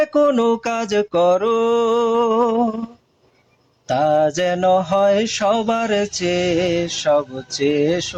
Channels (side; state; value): both; identical; correlation 1.00